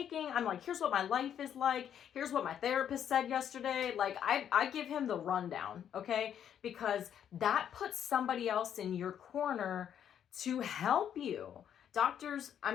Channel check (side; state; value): right; quieter; 9.3 dB